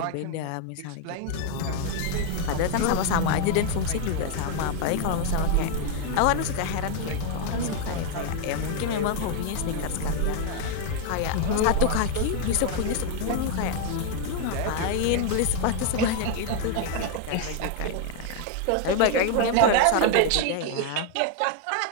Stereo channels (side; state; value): both; different; correlation 0.00